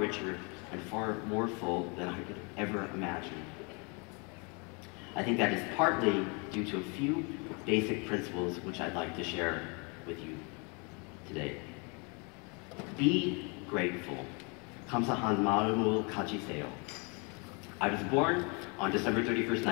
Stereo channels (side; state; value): right; quieter; 32.9 dB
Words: and far more full than I could ever imagine. I think that is partly due to a few basic principles which I'd like to share with you today. Be grateful. 감사하는 마음으로 가지세요. I was born on December 31st,